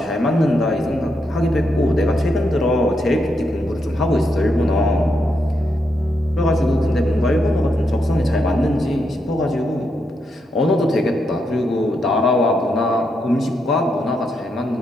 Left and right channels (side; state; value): both; normal; correlation 0.81